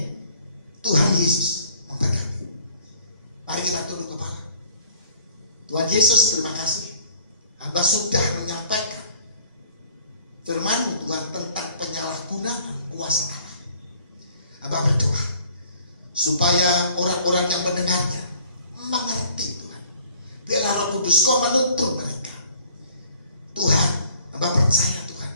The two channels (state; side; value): inverted; both; correlation -0.56